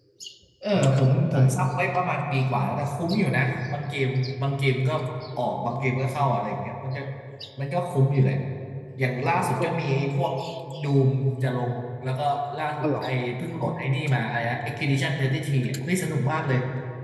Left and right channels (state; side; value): identical; both; correlation 1.00